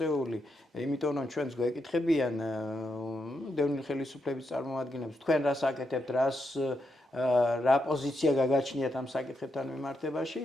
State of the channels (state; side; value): normal; both; correlation 0.83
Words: იმიტომ რომ ჩვენს გვეკითხებიან დევნილ ხელისუფლების წარმომადგენლებს, თქვენ რას აკეთებთ, რა პოზიცია გაგაჩნიათ ამ საკითხებთან მიმართებაში.